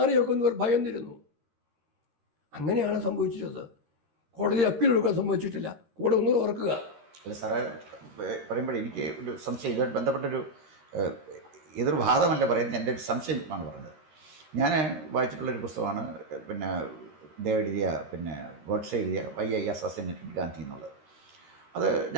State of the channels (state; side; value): late; left; 13 ms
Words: ഭയന്നിരുന്നു. അങ്ങനെയാണ് സംഭവിച്ചത്. കോടതി അപ്പീൽ എടുക്കാൻ സംഭവിച്ചിട്ടില്ല. കൂടെ ഒന്നും ഓർക്കുക. അല്ല സാറേ, പറയുമ്പോൾ എനിക്ക് ഒരു സംശയം, ഇതുമായിട്ട് ബന്ധപ്പെട്ടൊരു എതിർ വാദമല്ല പറയുന്നത്, എൻ്റെ ഒരു സംശയമാണ് പറഞ്ഞത്. ഞാൻ വായിച്ചിട്ടുള്ളൊരു പുസ്തകമാണ് എഴുതിയ ഗോഡ്സെ എഴുതിയ വൈ ഐ അസാസിനേറ്റഡ് ഗാന്ധി എന്നുള്ളത്. അത്